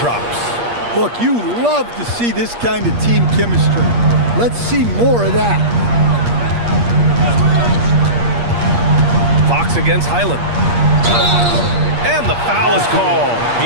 Look, you love to see this kind of team chemistry. Let's see more of that. Fox against Highland. And the foul is called.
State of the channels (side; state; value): left; late; 8.5 ms